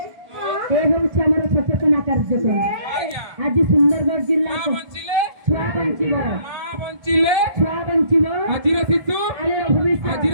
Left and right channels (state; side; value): late; left; 1.3 ms